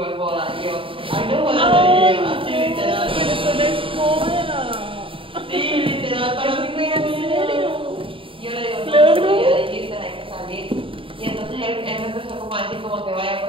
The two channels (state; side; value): late; left; 0.25 ms